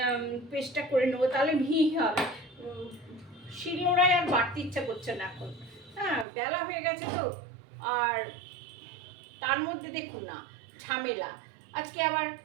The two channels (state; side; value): drops out; left; at 6.2 s